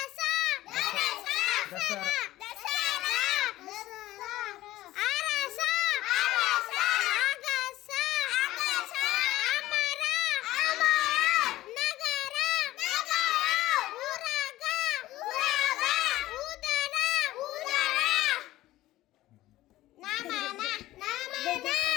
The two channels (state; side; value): quieter; right; 16.0 dB